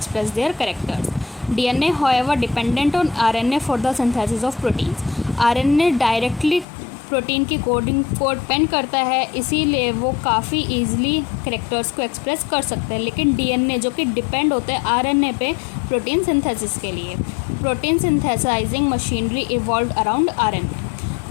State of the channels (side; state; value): right; drops out; at 6.7 s